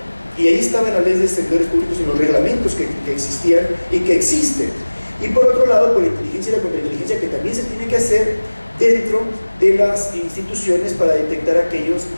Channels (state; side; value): inverted; both; correlation -1.00